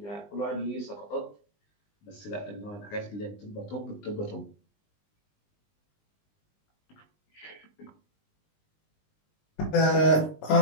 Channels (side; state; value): right; late; 20 ms